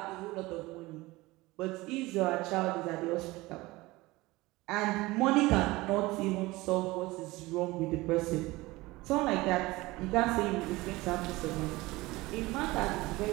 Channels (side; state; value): left; quieter; 20.5 dB